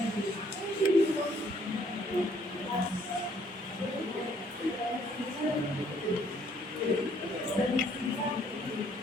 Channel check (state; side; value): normal; both; correlation 0.64